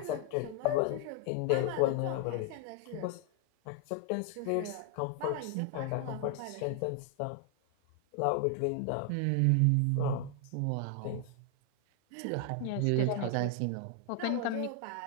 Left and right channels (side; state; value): both; different; correlation 0.00